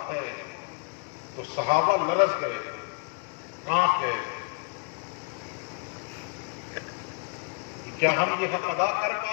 ہے، تو صحابہ لرز گئے تھے، کانپ گئے تھے. کیا ہم یہ حق ادا کر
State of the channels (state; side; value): quieter; right; 32.0 dB